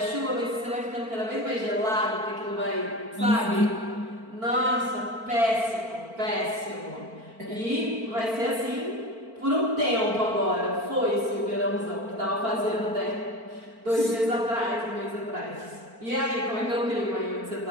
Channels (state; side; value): late; left; 4.5 ms